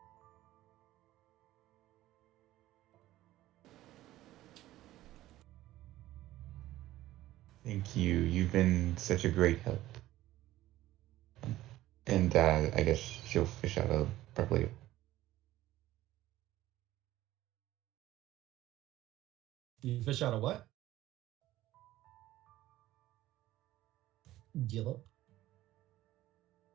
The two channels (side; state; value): left; quieter; 15.3 dB